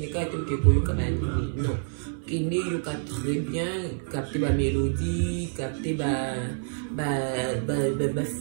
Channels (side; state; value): left; silent; 60 dB below the other